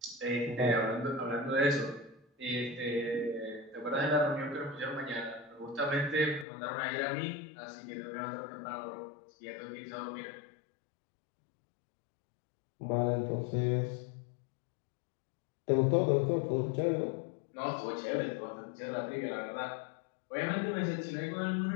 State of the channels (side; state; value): right; drops out; at 6.5 s